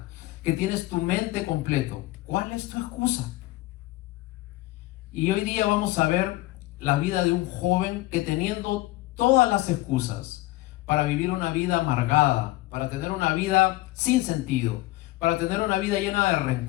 que tienes tu mente completo. ¿Cuál es tu excusa? Y hoy día vamos a ver la vida de un joven que, teniendo todas las excusas para vivir una vida amargada, para tener una vida sin sentido, para tener una vida llena de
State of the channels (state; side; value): quieter; right; 18.5 dB